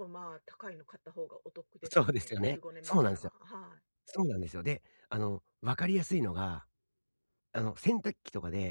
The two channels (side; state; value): both; inverted; correlation -1.00